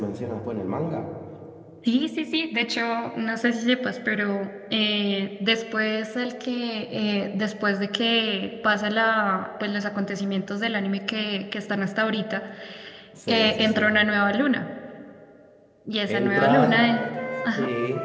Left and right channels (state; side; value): identical; both; correlation 1.00